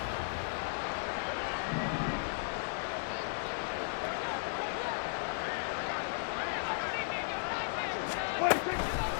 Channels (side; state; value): right; silent; 54 dB below the other